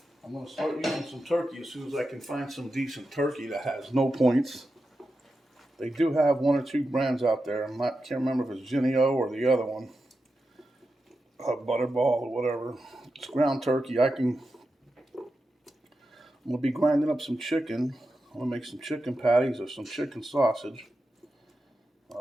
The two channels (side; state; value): both; normal; correlation 0.90